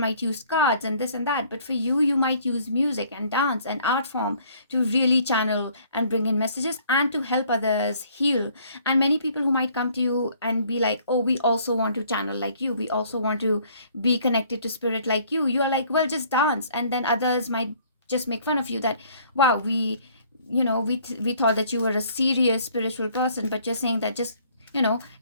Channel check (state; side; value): inverted; both; correlation -0.59